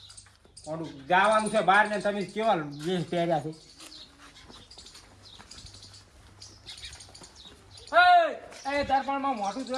ભોંડું જવાનું છે બહાર ને તમે કેવા વેશ પહેર્યા છે. એ દર્પણમાં મોઢું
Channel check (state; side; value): identical; both; correlation 1.00